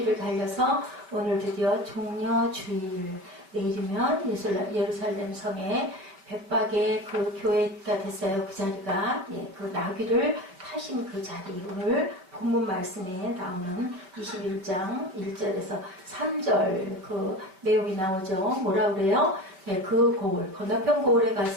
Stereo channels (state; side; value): late; left; 5.3 ms